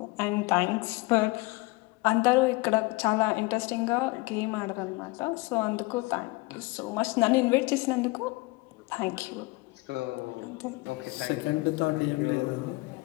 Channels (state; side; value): quieter; right; 24.1 dB